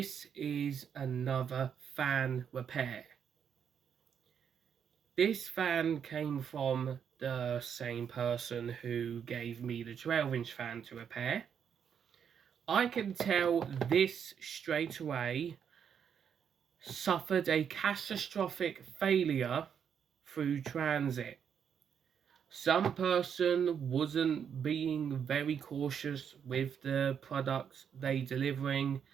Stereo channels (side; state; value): left; quieter; 7.8 dB